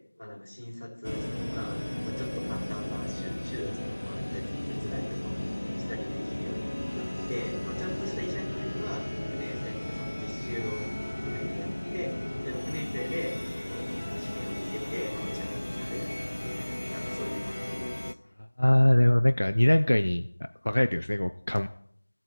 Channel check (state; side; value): inverted; both; correlation -1.00